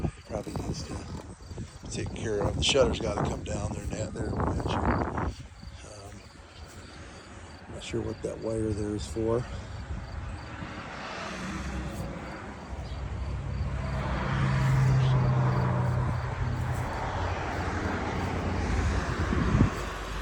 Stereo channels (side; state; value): both; identical; correlation 1.00